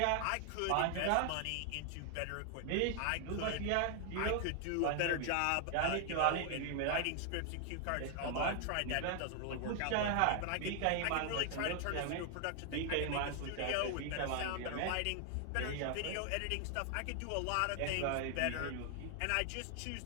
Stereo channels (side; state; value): both; different; correlation 0.00